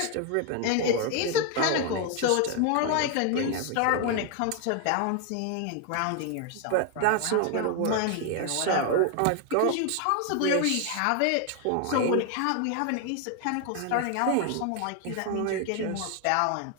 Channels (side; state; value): both; different; correlation 0.01